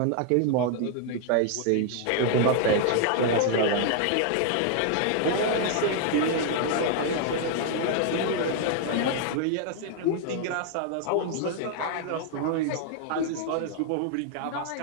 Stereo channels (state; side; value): different; both; correlation 0.00